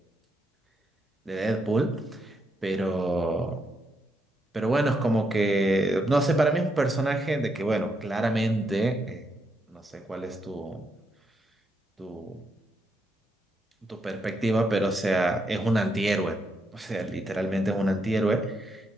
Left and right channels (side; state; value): both; normal; correlation 0.79